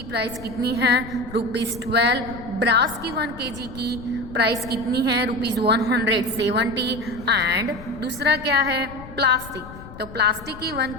प्राइस कितनी है ₹12. ब्रास की 1 kg की प्राइस कितनी है ₹170. एंड दूसरा क्या है प्लास्टिक. तो प्लास्टिक की 1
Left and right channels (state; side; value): noise; left; rumble, 15 dB below the sound